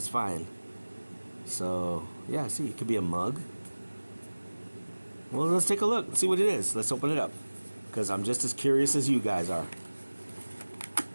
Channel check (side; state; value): both; inverted; correlation -1.00